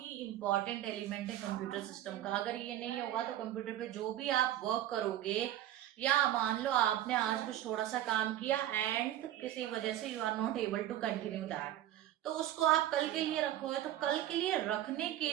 इंपॉर्टेंट एलिमेंट है कंप्यूटर सिस्टम का। अगर ये नहीं होगा तो कंप्यूटर पे जो भी आप वर्क करोगे, या मान लो आपने आज कुछ थोड़ा सा काम किया एंड किसी वजह से you are not able to continue that, तो उसको आप कल के लिए रखोगे, तो कल के लिए रखने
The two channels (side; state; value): left; quieter; 12.9 dB